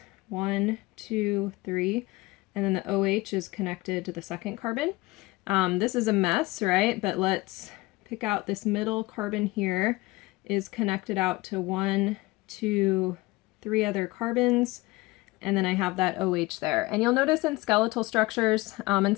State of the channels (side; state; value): right; quieter; 21.3 dB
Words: 1, 2, 3, and then the OH is connected to the second carbon. This is a mess, right? But let's pick out this middle carbon here is connected out to 1, 2, 3 other carbons, and then I have that OH there. And you'll notice in skeletal structures, and